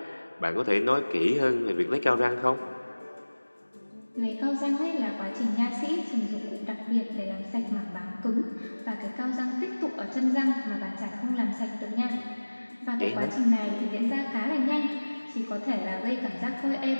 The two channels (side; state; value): both; inverted; correlation -1.00